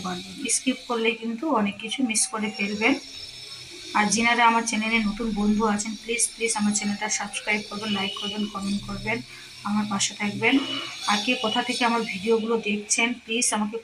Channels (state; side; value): identical; both; correlation 1.00